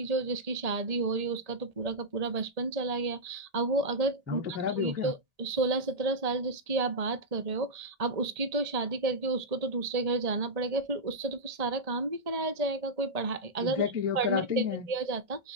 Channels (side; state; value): left; late; 1.8 ms